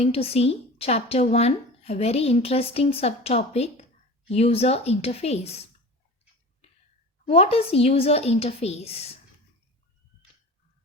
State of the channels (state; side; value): normal; both; correlation 0.35